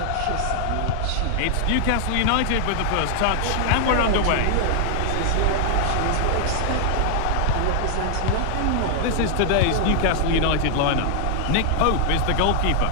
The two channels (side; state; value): both; different; correlation 0.00